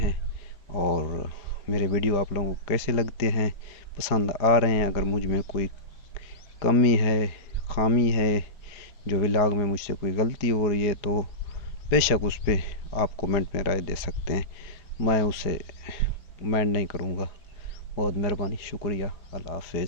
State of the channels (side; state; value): right; late; 4.8 ms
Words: और मेरे वीडियो आप लोगों को कैसे लगते हैं, पसंद आ रहे हैं। अगर मुझ में कोई कमी है, खामी है, जो व्लॉग में मुझसे कोई गलती हो रही है तो बेशक उस पर आप कमेंट में राय दे सकते हैं, मैं उसे माइंड नहीं करूँगा। बहुत मेहरबानी, शुक्रिया। अल्लाह